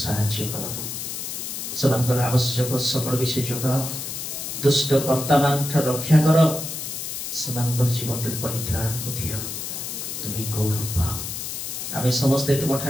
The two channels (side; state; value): left; noise; hiss, 6 dB below the sound